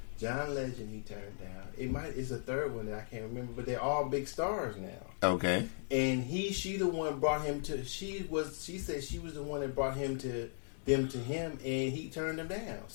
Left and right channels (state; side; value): silent; right; digital silence